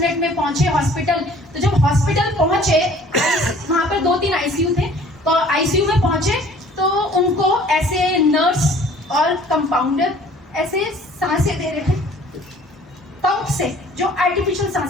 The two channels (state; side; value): normal; both; correlation 0.52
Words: में पहुंचे हॉस्पिटल। तो जब हॉस्पिटल पहुंचे, वहां पर 2-3 आईसीयू थे, तो आईसीयू में पहुंचे तो उनको ऐसे नर्स और कंपाउंडर ऐसे सांसें दे रहे थे पंप से, जो आर्टिफिशियल